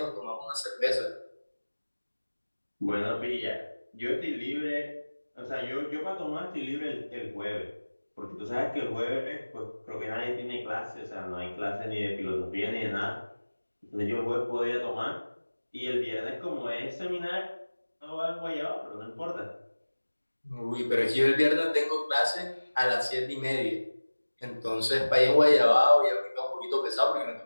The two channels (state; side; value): inverted; both; correlation -1.00